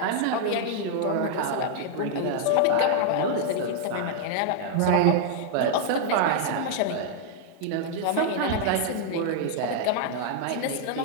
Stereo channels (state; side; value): different; both; correlation -0.01